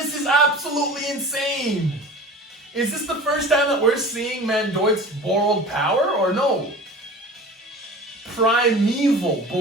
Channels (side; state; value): both; normal; correlation 0.38